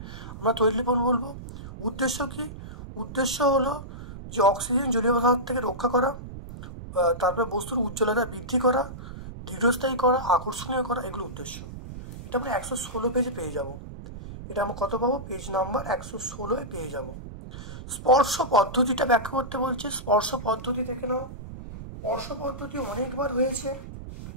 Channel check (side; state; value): right; noise; rumble, 12 dB below the sound